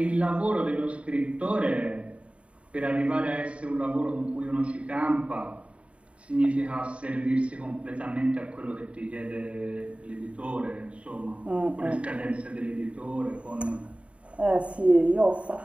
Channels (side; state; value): left; late; 0.062 ms